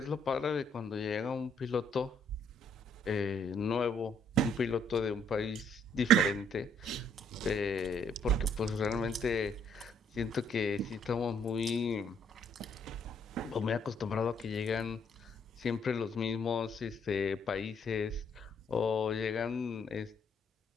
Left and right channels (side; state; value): both; normal; correlation 0.67